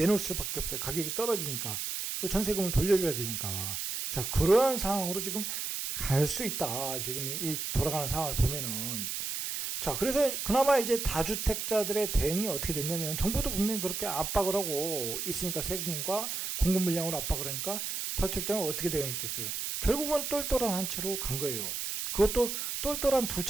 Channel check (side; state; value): right; noise; hiss, 3 dB below the sound